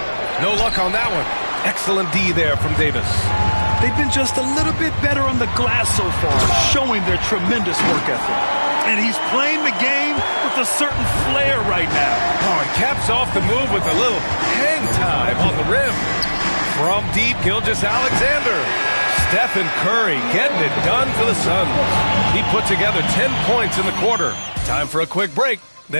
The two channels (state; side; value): inverted; both; correlation -1.00